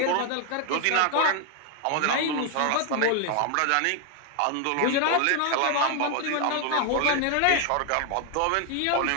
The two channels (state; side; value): different; both; correlation 0.01